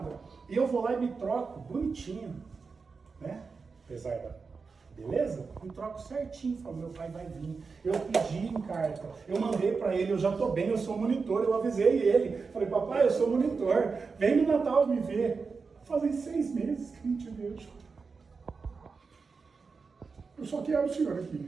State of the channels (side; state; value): left; quieter; 4.8 dB